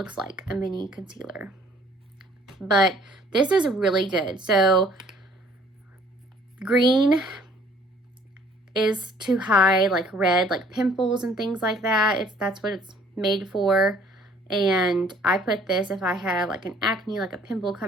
like a mini concealer. But this is really good. So green is to hide like red, like pimples and things like that. That's what it's made for. And I put this if I have like an acne, like a pimple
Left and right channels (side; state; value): both; normal; correlation 0.58